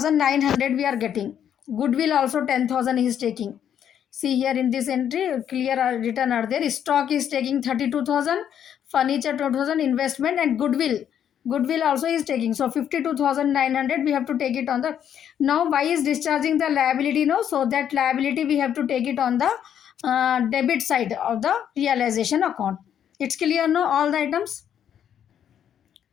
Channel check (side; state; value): right; quieter; 9.3 dB